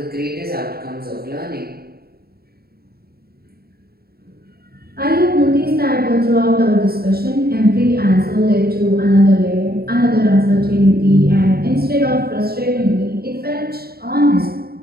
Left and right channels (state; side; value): late; left; 0.45 ms